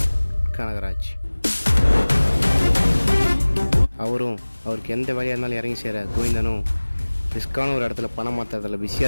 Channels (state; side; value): inverted; both; correlation -1.00